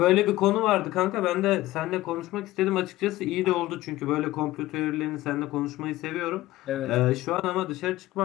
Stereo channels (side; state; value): right; quieter; 16.8 dB